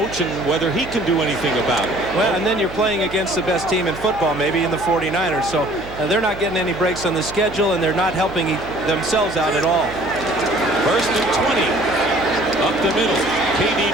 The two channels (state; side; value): noise; right; hum, 15 dB below the sound